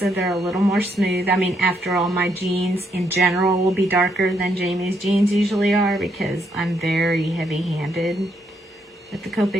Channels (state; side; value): normal; both; correlation 0.75